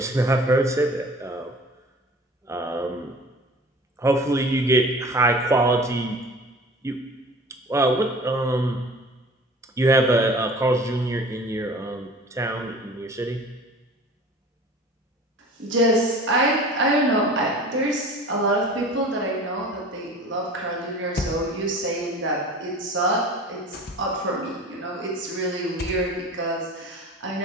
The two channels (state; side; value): normal; both; correlation 0.42